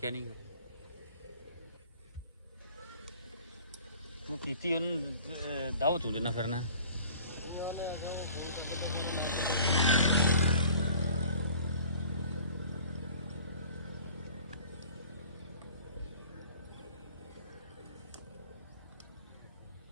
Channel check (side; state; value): both; inverted; correlation -0.48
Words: ਨਹੀਂ। ਤੂੰ ਕੀਤੀ ਉਹਨੂੰ ਦਾਵਤ ਹੁੰਦੇ ਨਾ ਫਿਰਨਾ।